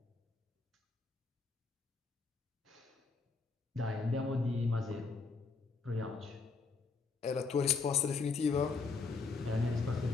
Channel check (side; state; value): right; quieter; 4.4 dB